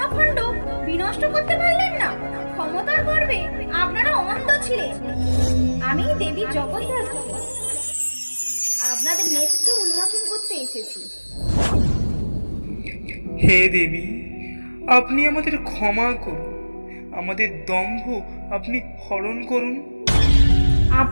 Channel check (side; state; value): both; inverted; correlation -1.00